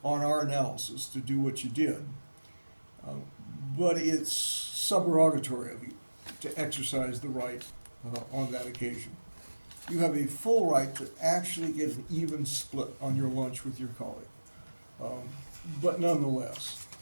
on our analysis to do what you did. But it's subrogatory of you to exercise the right on that occasion. You have a full right to actually get an even split on your lunch with your colleague. But nonetheless,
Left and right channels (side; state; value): both; inverted; correlation -1.00